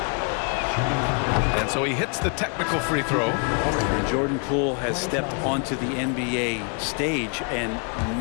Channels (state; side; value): quieter; right; 38.4 dB